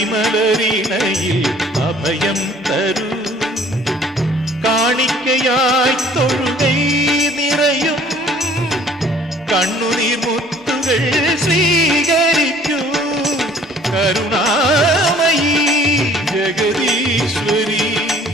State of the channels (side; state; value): both; normal; correlation 0.54